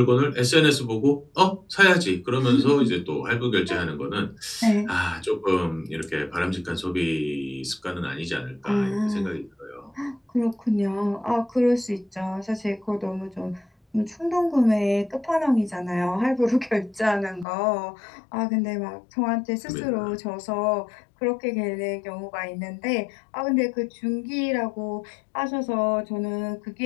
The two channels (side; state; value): right; drops out; at 17.4 s